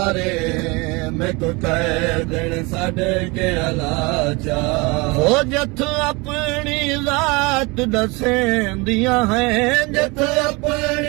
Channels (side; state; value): left; quieter; 26.2 dB